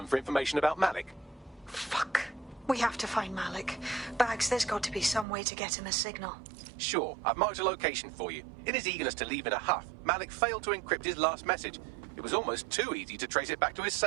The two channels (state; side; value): drops out; left; at 5.2 s